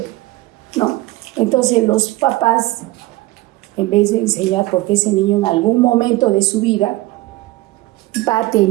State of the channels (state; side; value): quieter; left; 18.7 dB